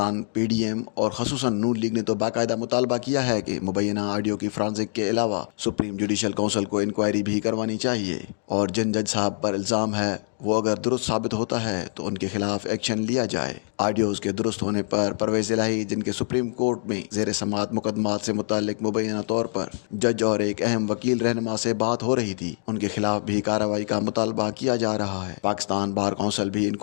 PDM और खसूसन नून लीग ने तो बाकायदा मुतालबा किया है कि मुबैना ऑडियो की फ्रांसिक के अलावा सुप्रीम जुडिशल काउंसिल को इंक्वायरी भी करवानी चाहिए, और जिन जज साहब पर इल्ज़ाम है वो अगर दुरुस्त साबित होता है तो उनके खिलाफ एक्शन लिया जाए। ऑडियोज़ के दुरुस्त होने पर परवेज़ इलाही, जिनके सुप्रीम कोर्ट में ज़ेर समाअत मुकदमात से मुताल्लिक मुबैना तौर पर जज और एक अहम वकील रहनुमा से बात हो रही थी, उनके खिलाफ भी कार्रवाई का मुतालबा किया जा रहा है। पाकिस्तान बार काउंसिल भी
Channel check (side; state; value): right; silent; digital silence